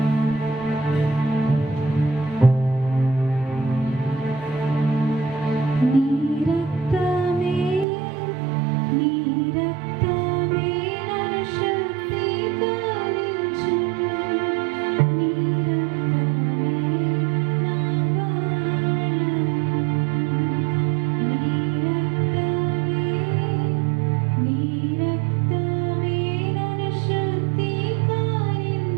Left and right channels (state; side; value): drops out; left; at 7.9 s